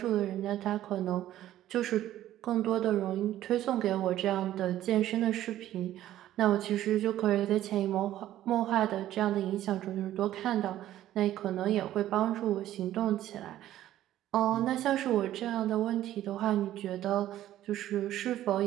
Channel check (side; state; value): left; quieter; 13.1 dB